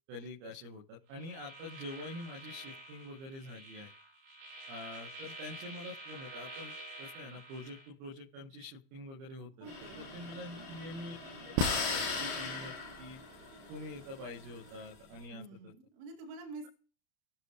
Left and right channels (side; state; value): left; late; 30 ms